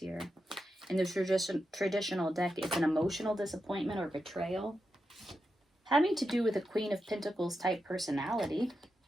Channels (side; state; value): both; normal; correlation 0.88